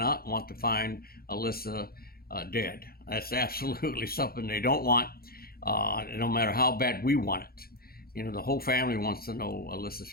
want to find Alyssa dead. That's absolutely something they don't want, no matter how bad we want it. The whole family wants to know Alyssa's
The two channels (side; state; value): right; late; 0.44 ms